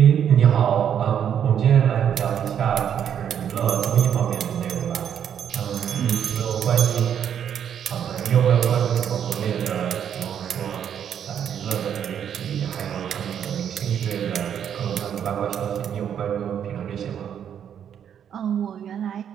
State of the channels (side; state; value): left; quieter; 8.8 dB